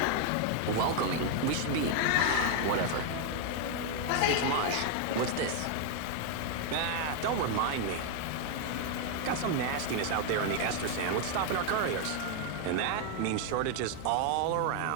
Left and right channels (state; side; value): different; both; correlation 0.01